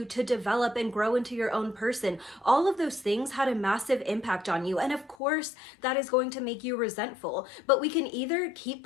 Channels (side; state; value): right; drops out; at 5.2 s